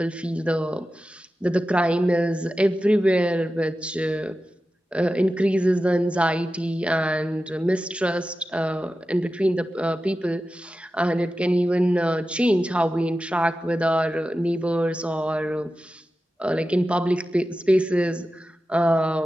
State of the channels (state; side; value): normal; both; correlation 0.93